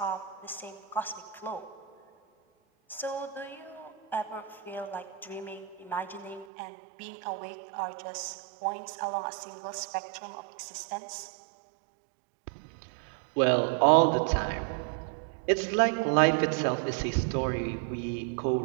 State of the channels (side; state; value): left; drops out; at 6.5 s